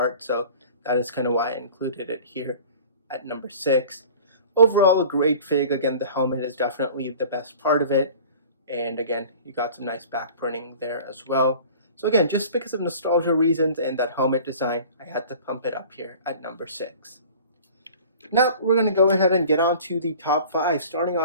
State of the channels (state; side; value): inverted; both; correlation -0.43